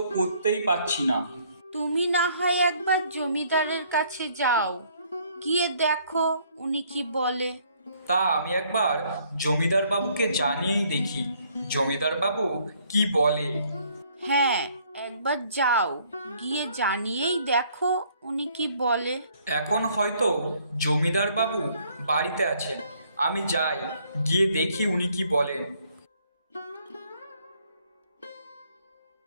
করতেই পারছি না। তুমি না হয় একবার জমিদারের কাছে যাও, গিয়ে দেখো উনি কি বলে। তা আমি একবার জমিদার বাবুকে জানিয়েই দেখি, জমিদার বাবু কি বলে। হ্যাঁ, একবার যাও, গিয়ে জানিয়েই দেখো উনি কি বলে। এখন হয়তো জমিদার বাবু বাড়িতে আছেন, আমি যাই, গিয়ে দেখি উনি কি বলেন।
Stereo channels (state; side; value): inverted; both; correlation -0.64